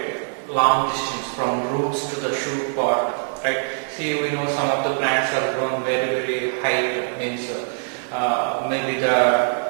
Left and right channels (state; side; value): silent; left; digital silence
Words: long distance from roots to the shoot pod. Right? See, we know some of the plants are grown very high, means maybe the